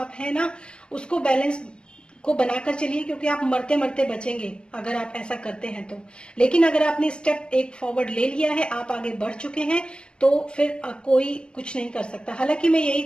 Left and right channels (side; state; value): right; late; 0.052 ms